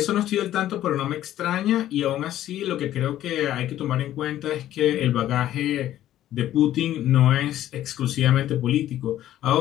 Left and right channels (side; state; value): right; quieter; 12.8 dB